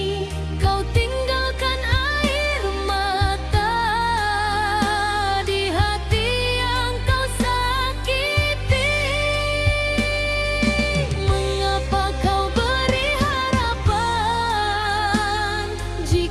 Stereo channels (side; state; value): both; identical; correlation 1.00